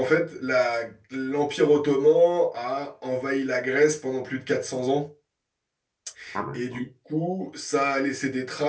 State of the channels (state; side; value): identical; both; correlation 1.00